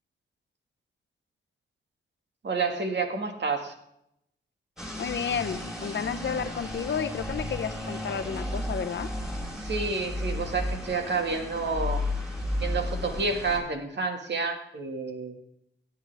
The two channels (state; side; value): normal; both; correlation 0.20